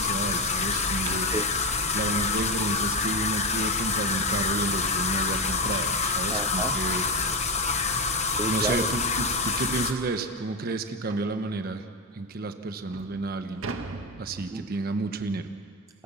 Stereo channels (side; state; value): both; normal; correlation 0.14